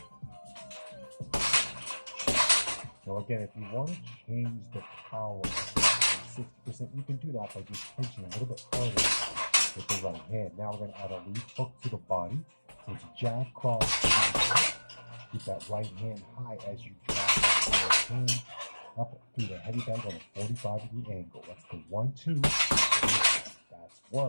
Now again, if you want to change the power to 60%, you can do that by just punching a little bit harder with the right hand. Now we're going to add a lead hook to the body. So it's a jab, cross, keep that right hand high as you drive that left hand up through the heavy bag on a 45-degree angle. That's the 1, 2. That's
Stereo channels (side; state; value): both; inverted; correlation -1.00